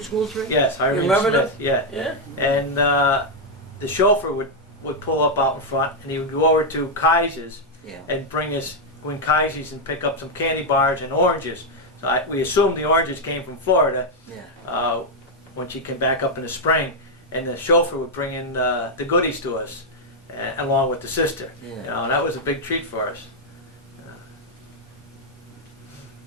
school 3? Yes, Irene remember Smith. Yeah, Yeah. and the chauffeur would pull up out in front, and he would go over to Kaiser's Yeah. and go in Kaiser's and pick up some candy bars and oranges. So we assumed the oranges came from Florida. Yeah. When she came back up in the spring, and the chauffeur would bring in the goodies to us, along with the sister. Yeah. You know, that was a big treat for us.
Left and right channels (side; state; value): both; normal; correlation 0.00